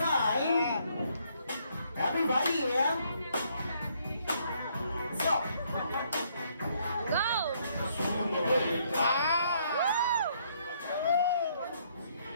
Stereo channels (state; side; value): inverted; both; correlation -0.69